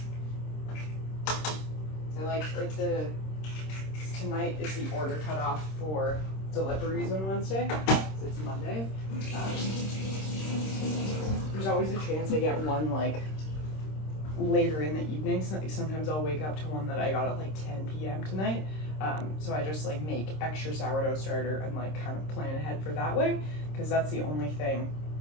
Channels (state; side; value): late; right; 26 ms